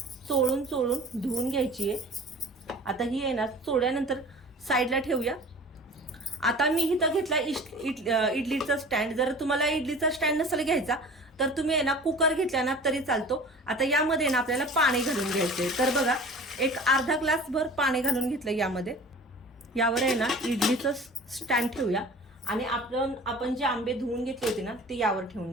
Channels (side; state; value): both; normal; correlation 0.41